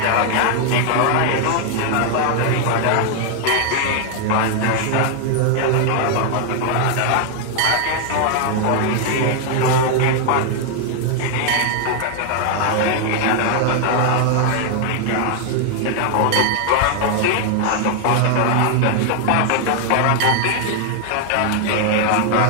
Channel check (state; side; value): different; both; correlation 0.00